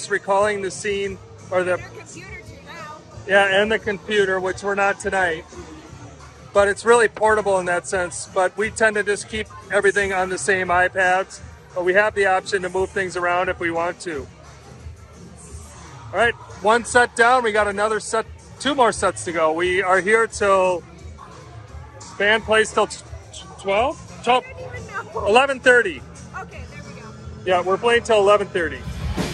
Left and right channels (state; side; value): identical; both; correlation 1.00